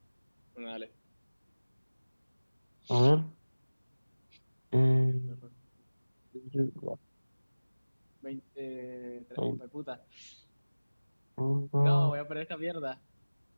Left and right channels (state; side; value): inverted; both; correlation -1.00